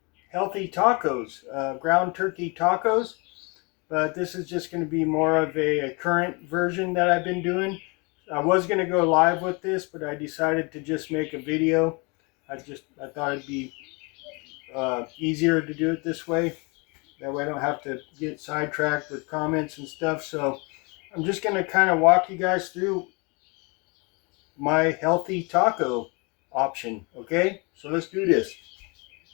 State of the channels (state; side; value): quieter; right; 30.0 dB